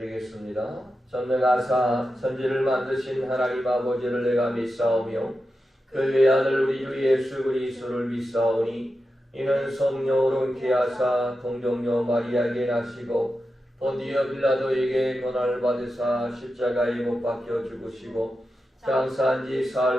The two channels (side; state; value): both; normal; correlation 0.90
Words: 전능하사 천지를 만드신 하나님 아버지를 내가 믿사오며 그 외아들 우리 주 예수 그리스도를 믿사오니, 이는 성령으로 잉태하사 동정녀 마리아에게 나시고 본디오 빌라도에게 고난을 받으사 십자가에 못 박혀 죽으시고 장사한 지